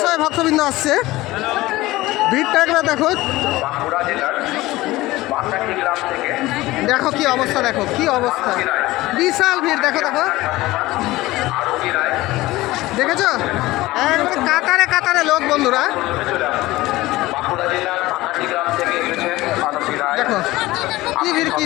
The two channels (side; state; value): right; quieter; 18.5 dB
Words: শয়ে ভক্তবৃন্দ আসছে। ভিড়টা একবার দেখো, দেখো কি অবস্থা, দেখো কি অবস্থা, বিশাল ভিড়। দেখো দেখো, দেখেছো একবারে কাতারে কাতারে লোক বন্ধুরা। দেখো কি ভিড়, কি